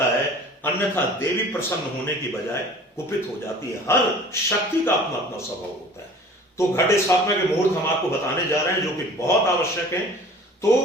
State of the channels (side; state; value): both; normal; correlation 0.46